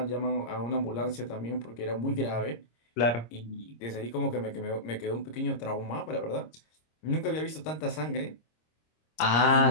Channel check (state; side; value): late; right; 26 ms